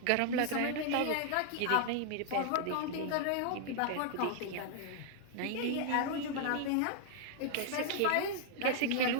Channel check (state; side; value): different; both; correlation 0.00